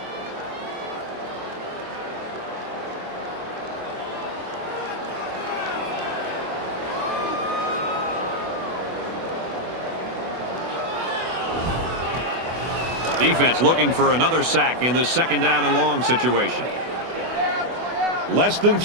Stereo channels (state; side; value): late; left; 24 ms